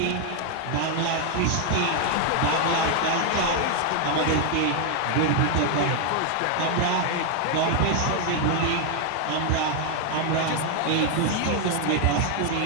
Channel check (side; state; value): both; different; correlation 0.00